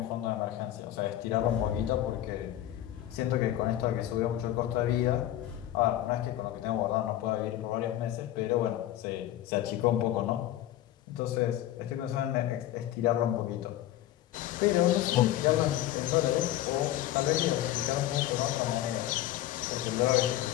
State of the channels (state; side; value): quieter; right; 13.3 dB